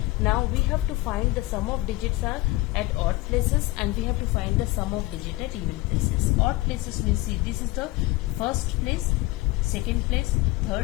now we have to find the sum of digits are at odd places, and we have to find the sum of digit at even places. Odd places, we see this is the first place, second place,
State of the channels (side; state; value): right; quieter; 19.9 dB